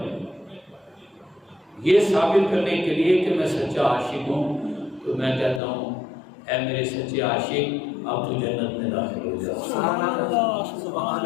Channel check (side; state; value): right; drops out; at 5.6 s